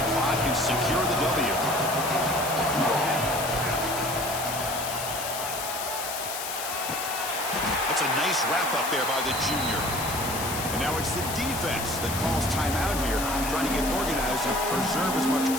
clock and secure the W. That's a nice wrap-up there by the junior. And now it's the defense that calls timeout here, trying to get organized and preserve as much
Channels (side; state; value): left; noise; hiss, 6 dB below the sound